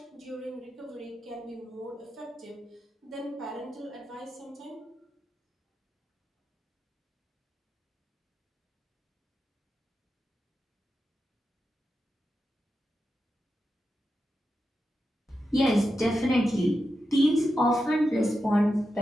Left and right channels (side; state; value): both; normal; correlation 0.89